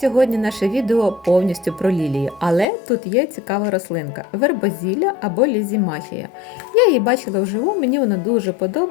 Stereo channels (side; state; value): right; drops out; at 2.7 s